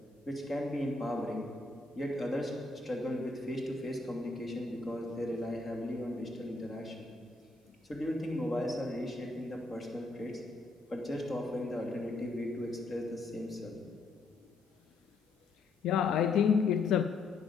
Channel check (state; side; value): quieter; right; 3.5 dB